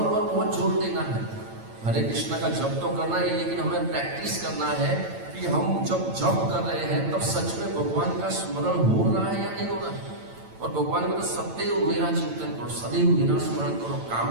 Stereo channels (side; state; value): left; late; 9.0 ms